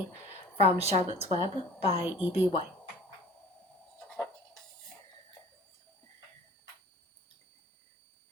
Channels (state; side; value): normal; both; correlation 0.46